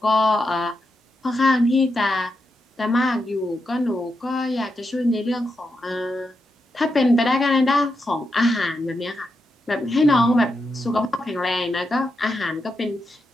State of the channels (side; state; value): both; normal; correlation 0.85